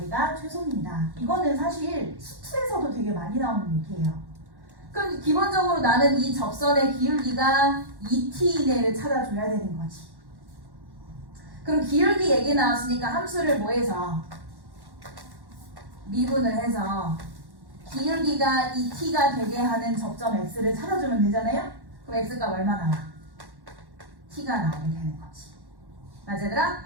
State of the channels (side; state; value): left; late; 1.1 ms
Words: 최소입니다. 이거는 사실 수투에서도 되게 많이 나오는 얘기예요. 그럼 기본적으로 나는 이 접선의 기울기가 2t 이내를 찾아줘야 되는 거지. 그럼 기울기 얘기 나왔으니까 함수를 뭐해서 미분을 해서 기울기가 2t가 되게 하는 접점 x를 찾아주면 되잖아요? 그럼 x가 얼마 나와? t가 나오게 되는 거지. 맞아 얘들아?